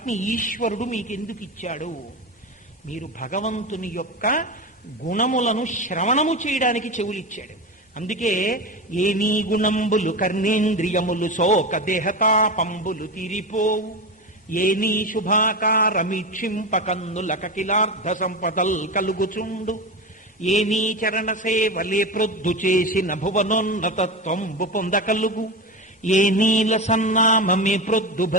ఈశ్వరుడు మీకెందుకు ఇచ్చాడు? మీరు భగవంతుని యొక్క గుణములను శ్రవణము చేయడానికి చెవులిచ్చాడు. అందుకే ఏ నీ గుణంబులు కర్ణేంద్రియములు శోక దేహతాపంబులు తీరిపోవు, ఏ నీ శుభాకారమీక్షింప కన్నుల కకిలార్థ సంపదల్ కలుగుచుండు, ఏ నీ చరణ సేవలే ప్రొద్దు చేసిన భువనోన్నతత్వంబు పొందకలుగు, ఏ నీల సన్నామమే ప్రొద్దు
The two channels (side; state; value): both; normal; correlation 0.21